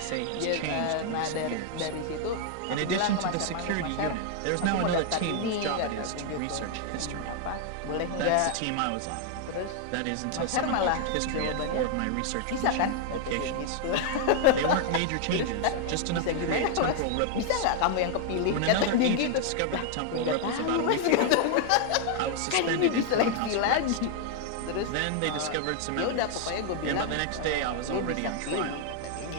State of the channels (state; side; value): different; both; correlation 0.00